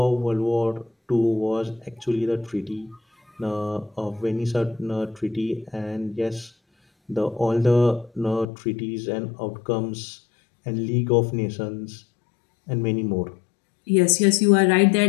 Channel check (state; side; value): drops out; right; at 8.5 s